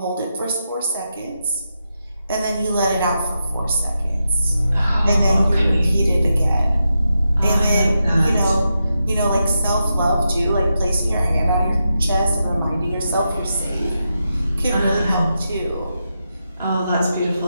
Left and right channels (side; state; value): both; inverted; correlation -0.87